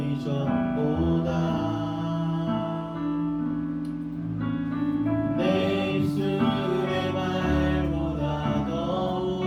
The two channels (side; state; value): both; identical; correlation 1.00